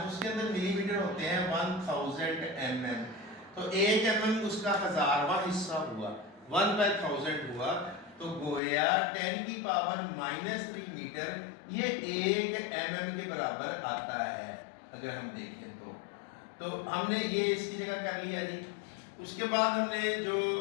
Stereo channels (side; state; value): right; drops out; at 8.6 s